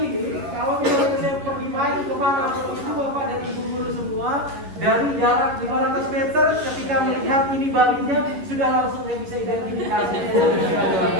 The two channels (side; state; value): left; late; 11 ms